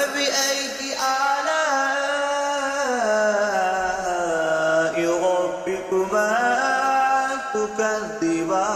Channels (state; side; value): identical; both; correlation 1.00